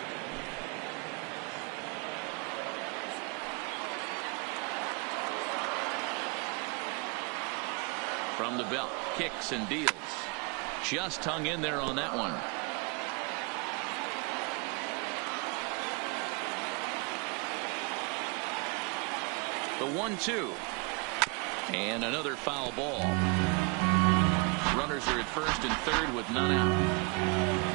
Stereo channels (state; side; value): quieter; left; 30.7 dB